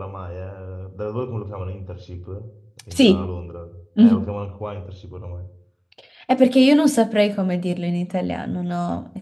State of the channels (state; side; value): identical; both; correlation 1.00